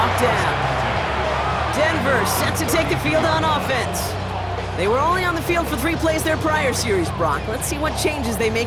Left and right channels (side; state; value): both; identical; correlation 1.00